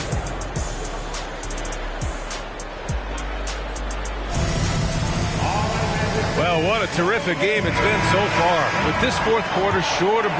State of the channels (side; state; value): both; identical; correlation 1.00